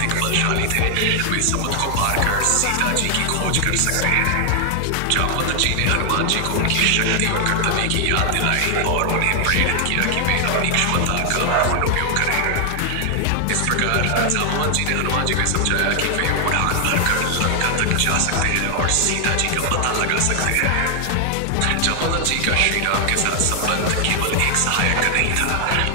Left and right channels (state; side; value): different; both; correlation 0.00